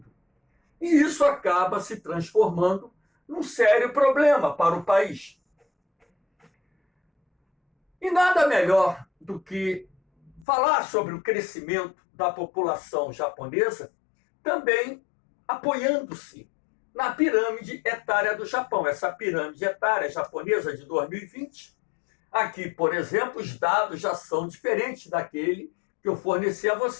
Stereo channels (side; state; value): right; drops out; at 10.5 s